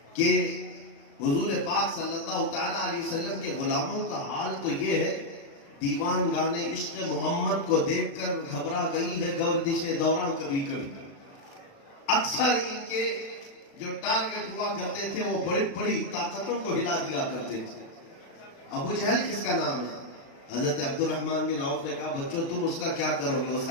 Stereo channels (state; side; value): late; right; 35 ms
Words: کہ حضور پاک صلی اللہ تعالیٰ علیہ وسلم کے غلاموں کا حال تو یہ ہے، دیوان گانے عشق محمد کو دیکھ کر گھبرا گئی ہے گردش دوران کبھی کبھی۔ اکثر ان کے جو ٹارگٹ ہوا کرتے تھے وہ بڑی بڑی طاقتوں کو ہلا دیا کرتے تھے۔ ابو جہل کس کا نام ہے؟ حضرت عبد الرحمن بن عوف نے کہا بچوں تم اس کا کیا کرو گے؟ وہ